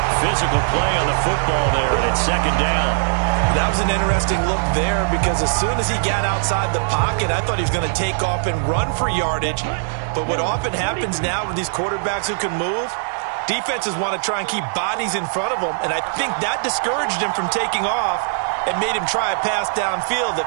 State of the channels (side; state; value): left; silent; digital silence